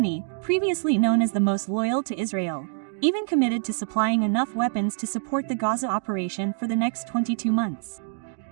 previously known as the most loyal to Israel, even committed to supplying enough weapons to support the Gaza operation for the next 22 months.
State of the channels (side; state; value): left; silent; digital silence